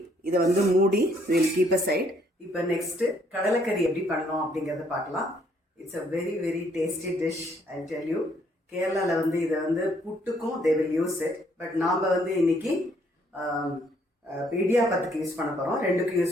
இதை வந்து மூடி வில் கீப் அ சைட். இப்போ நெக்ஸ்ட்டு கடலைக்கறி எப்படி பண்ணோம் அப்படிங்கிறத பார்க்கலாம். It's a very very tasty dish, I tell you. கேரளாவில் வந்து இதை வந்து புட்டுக்கும் they will use it. But நாம் வந்து இன்னைக்கு இடியாப்பத்துக்கு யூஸ் பண்ண போகிறோம். ரெண்டுக்கும்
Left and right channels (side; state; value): both; normal; correlation 0.67